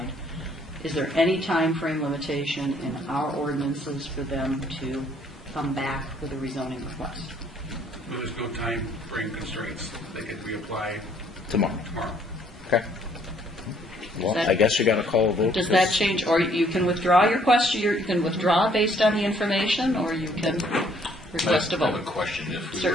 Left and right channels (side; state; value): both; normal; correlation 0.63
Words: is there any time frame limitation in our ordinances for them to come back with a rezoning request? There's no time frame constraints. They can reapply tomorrow. Tomorrow. Okay. Well, I guess you got to call a vote. Does that change, or you can withdraw your question, you can withdraw based on the information, or you can request a I have vote? a question. If we